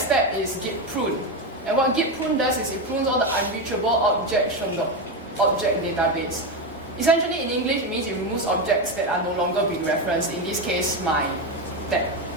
step is Git prune. And what Git prune does is it prunes all the unreachable objects from the object database. Essentially, in English, it means it removes objects that are no longer being referenced. In this case,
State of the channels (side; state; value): both; normal; correlation 0.12